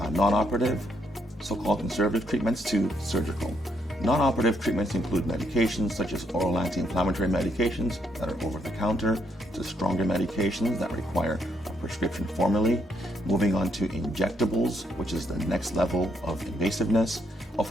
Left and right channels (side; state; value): both; normal; correlation 0.74